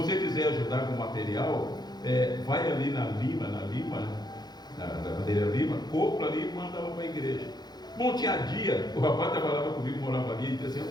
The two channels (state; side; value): late; right; 0.20 ms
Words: quiser ajudar com material, vai ali na madeira Lima, compra ali e manda para a igreja. Bom, tinha dia, o rapaz trabalhava comigo, morava ali, e disse assim: